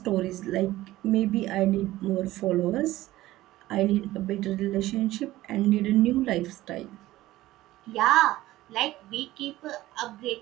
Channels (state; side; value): quieter; left; 16.4 dB